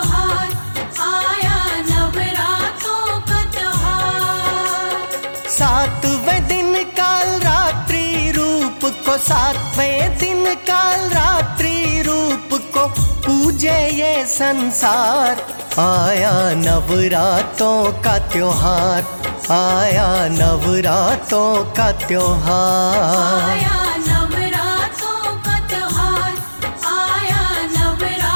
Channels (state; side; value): inverted; both; correlation -1.00